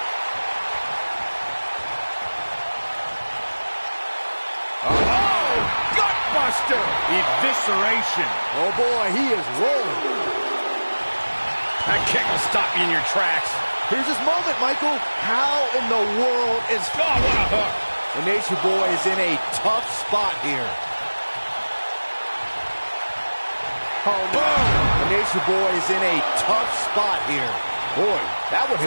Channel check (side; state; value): both; inverted; correlation -1.00